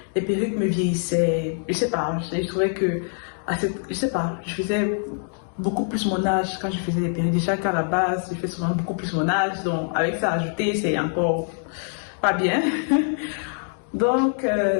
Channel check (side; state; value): right; silent; 62 dB below the other